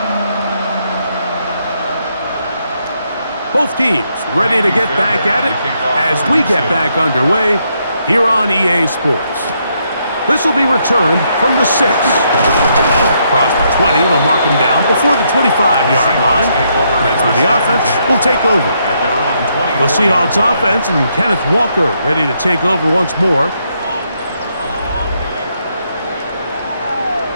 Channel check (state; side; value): inverted; both; correlation -0.76